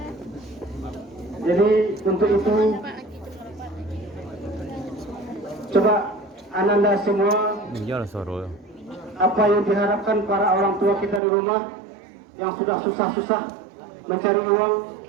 Jadi untuk itu, coba Ananda semua, apa yang diharapkan para orang tua kita di rumah yang sudah susah-susah mencari uang,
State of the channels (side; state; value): left; drops out; at 11.2 s